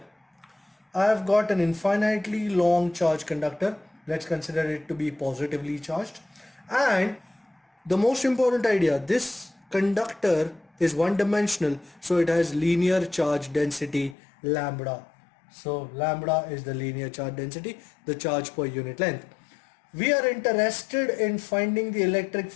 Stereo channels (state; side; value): drops out; right; at 14.2 s